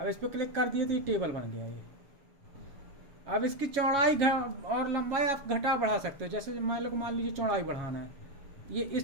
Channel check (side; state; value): left; late; 7.2 ms